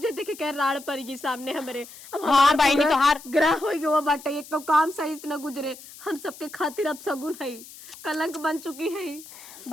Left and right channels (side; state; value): left; noise; hiss, 18 dB below the sound